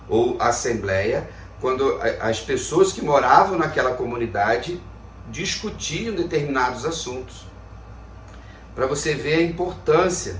ou assembleia, quando as pessoas que moravam naquela comunidade discutiam determinados assuntos. Para você ver a importância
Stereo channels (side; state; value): both; identical; correlation 1.00